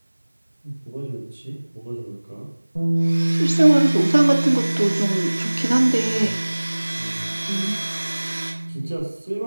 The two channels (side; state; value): both; inverted; correlation -1.00